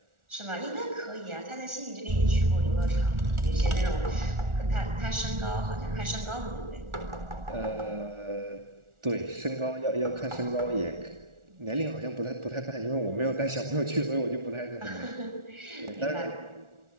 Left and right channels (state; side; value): late; left; 1.4 ms